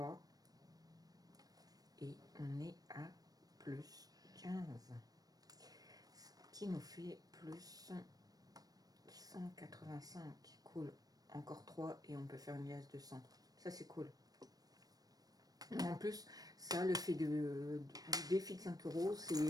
et on est à plus 15, ce qui nous fait plus 185, cool. Encore 3 et on peut faire une liasse de 100, ça c'est cool. En plus, ça, le fait du défi de 5 euros,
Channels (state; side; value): late; left; 0.18 ms